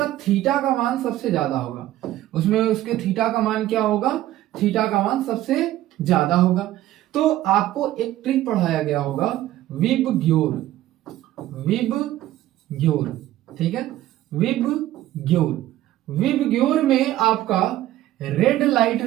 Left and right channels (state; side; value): quieter; left; 14.3 dB